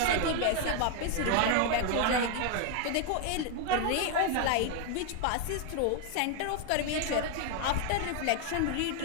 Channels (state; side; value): different; both; correlation 0.00